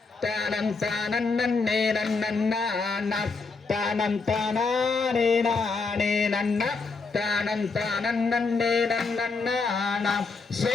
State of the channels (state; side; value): quieter; right; 4.3 dB